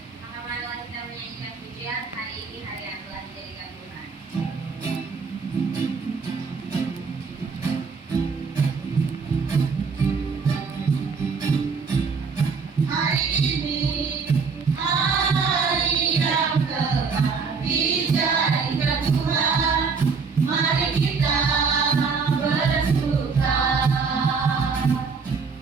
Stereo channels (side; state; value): left; quieter; 5.2 dB